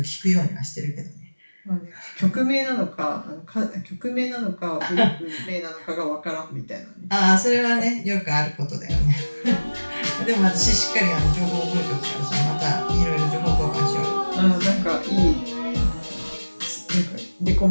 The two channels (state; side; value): inverted; both; correlation -1.00